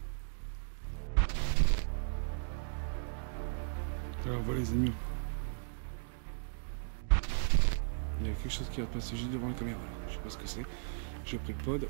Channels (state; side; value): silent; left; digital silence